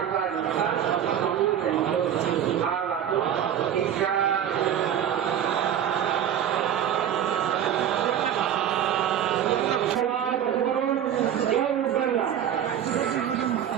समुञ्चन्तु आगतु दीक्षा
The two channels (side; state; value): left; quieter; 9.6 dB